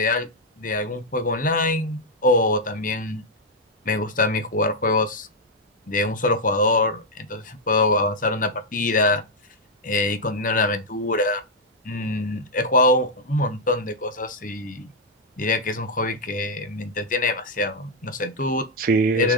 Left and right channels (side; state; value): both; normal; correlation -0.02